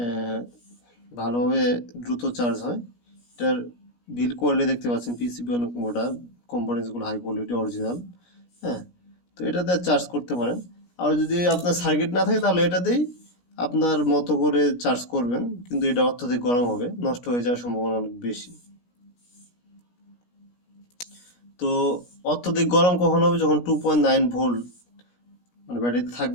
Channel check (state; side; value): late; right; 17 ms